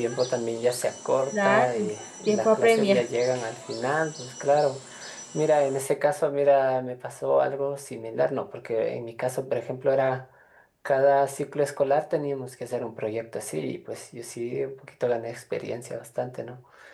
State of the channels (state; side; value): identical; both; correlation 1.00